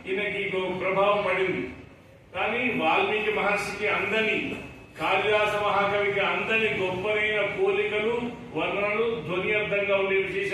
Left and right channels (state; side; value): identical; both; correlation 1.00